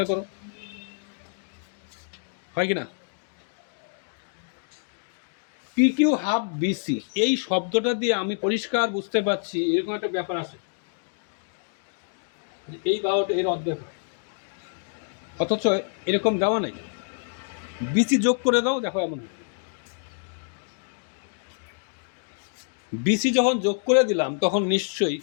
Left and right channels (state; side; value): silent; right; digital silence